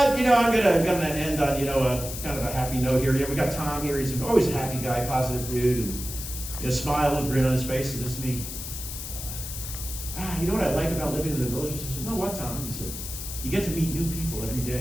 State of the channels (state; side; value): noise; left; hiss, 8 dB below the sound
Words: gonna end on a kind of a happy note here. We got Tom here. He's always a happy guy, positive dude, and a smile and grin on his face. He says to me, "You know what I like about living in the villages?" I said, "No, what, Tom?" He said, "You get to meet new people every